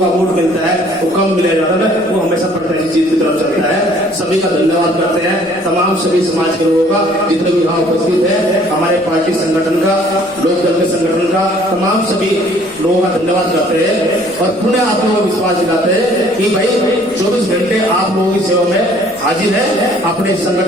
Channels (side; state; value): left; noise; rumble, 27 dB below the sound